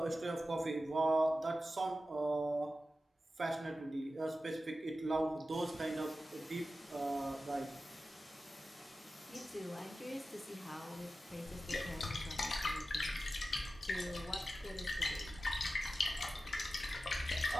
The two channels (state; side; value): normal; both; correlation 0.93